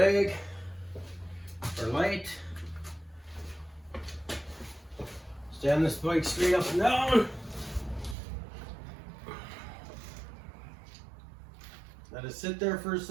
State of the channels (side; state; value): left; drops out; at 8.2 s